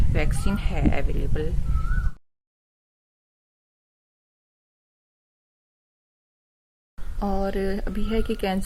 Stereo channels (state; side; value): identical; both; correlation 1.00